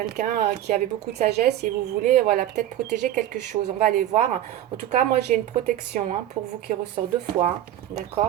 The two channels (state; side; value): quieter; left; 12.6 dB